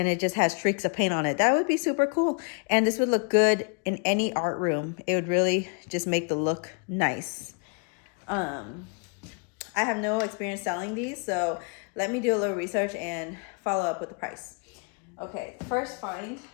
it just has streaks of paint on it? That would be super cool. And this would look good in any art room. It would really just make the look nice. I have no experience selling these, so let me do a little research and follow up with the price. Okay, first find.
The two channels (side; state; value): right; quieter; 37.4 dB